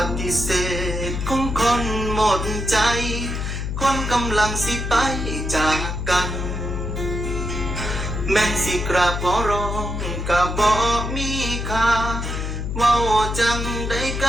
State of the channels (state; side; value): noise; left; hum, 3 dB below the sound